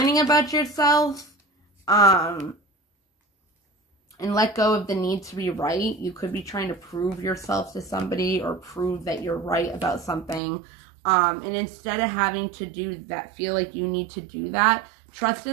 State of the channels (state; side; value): drops out; left; at 10.4 s